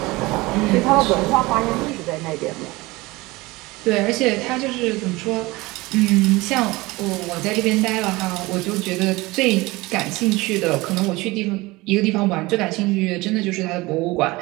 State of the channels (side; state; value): left; quieter; 21.6 dB